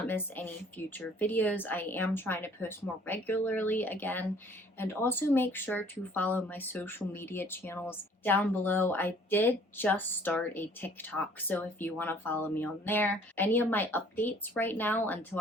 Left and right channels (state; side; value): normal; both; correlation 0.56